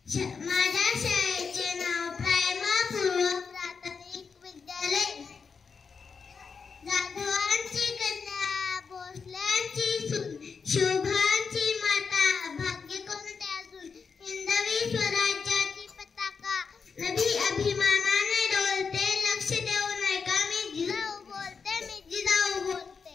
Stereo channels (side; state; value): right; quieter; 5.5 dB